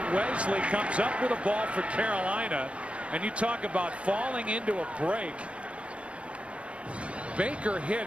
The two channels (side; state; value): left; late; 0.061 ms